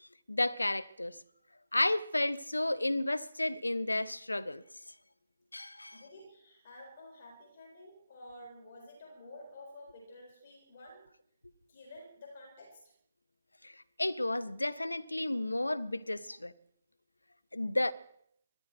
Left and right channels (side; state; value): both; inverted; correlation -0.99